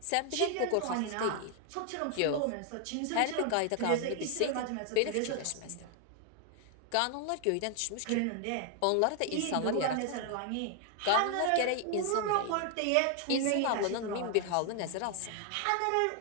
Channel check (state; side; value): different; both; correlation 0.00